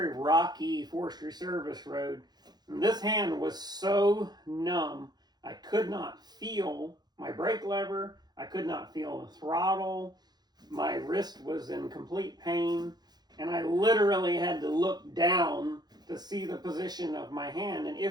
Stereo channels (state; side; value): late; left; 0.20 ms